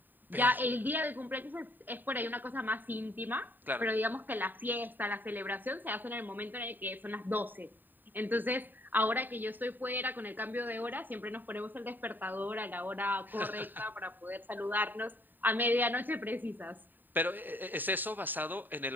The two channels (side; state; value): left; late; 0.090 ms